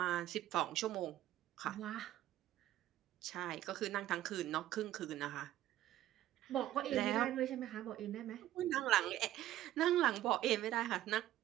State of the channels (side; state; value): left; quieter; 13.6 dB